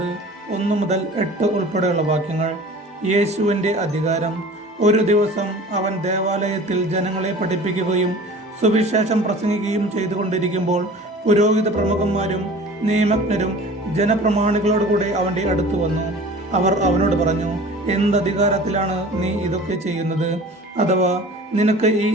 1 മുതൽ 8 ഉൾപ്പെടെയുള്ള വാക്യങ്ങൾ. യേശുവിൻ്റെ അധികാരം. ഒരു ദിവസം അവൻ ദേവാലയത്തിൽ ജനങ്ങളെ പഠിപ്പിക്കുകയും സുവിശേഷം പ്രസംഗിക്കുകയും ചെയ്തുകൊണ്ടിരിക്കുമ്പോൾ പുരോഹിത പ്രമുഖന്മാരും നിയമജ്ഞരും ജനപ്രമാണികളോടുകൂടെ അവൻ്റെ അടുത്ത് വന്നു. അവർ അവനോട് പറഞ്ഞു, എന്തധികാരത്തിലാണ് നീ ഇതൊക്കെ ചെയ്യുന്നത്? അഥവാ നിനക്ക് ഈ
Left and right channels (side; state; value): both; normal; correlation 0.42